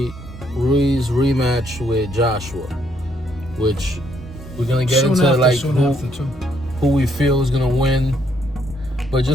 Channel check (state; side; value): normal; both; correlation 0.71